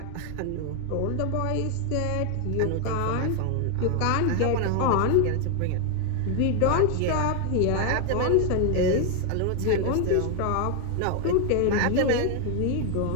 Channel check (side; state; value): both; different; correlation 0.00